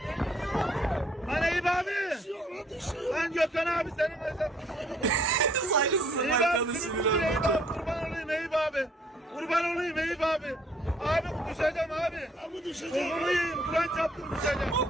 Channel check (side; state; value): both; normal; correlation 0.63